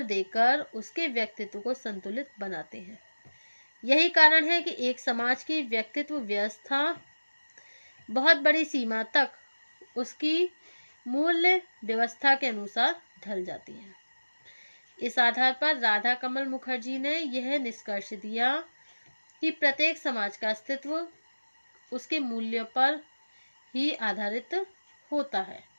देकर उसके व्यक्तित्व को संतुलित बनाते हैं। यही कारण है कि एक समाज की व्यक्तित्व व्यवस्था बहुत बड़ी सीमा तक उसकी मूल्य व्यवस्था के अनुसार ढल जाती है। इस आधार पर राधा कमल मुखर्जी ने यह निष्कर्ष दिया कि प्रत्येक समाज का अस्तित्व उसके मूल्यों पर ही आधारित होता है।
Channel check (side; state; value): both; inverted; correlation -1.00